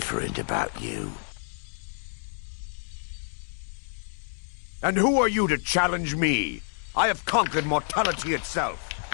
about you. And who are you to challenge me? I have conquered mortality itself.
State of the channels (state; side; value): silent; right; 59 dB below the other